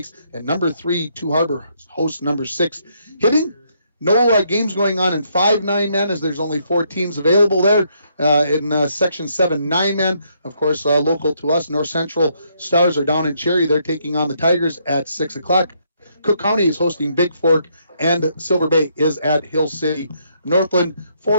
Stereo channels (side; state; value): both; inverted; correlation -0.73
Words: And number 3, Two Harbor hosts number 6. Hitting, no games going on in 5 9-man as there's only 4 teams available there. In Section 7 9-man, of course, local to us, North Central Stars are down in Cherry. They're taking on the Tigers at 6 o'clock. Cook County is hosting Big Fork, and Silver Bay is at Hill City. Northland